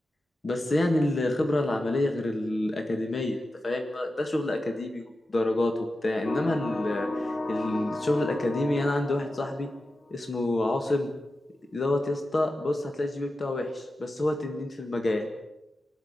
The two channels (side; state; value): both; normal; correlation 0.92